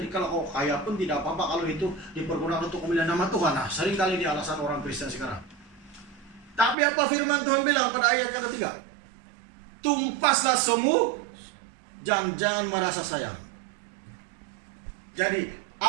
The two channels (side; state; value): left; drops out; at 6.8 s